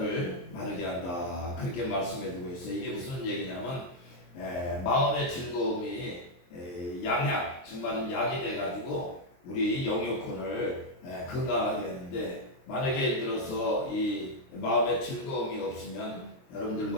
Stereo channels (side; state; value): right; late; 23 ms